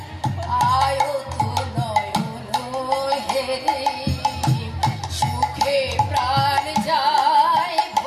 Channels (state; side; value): identical; both; correlation 1.00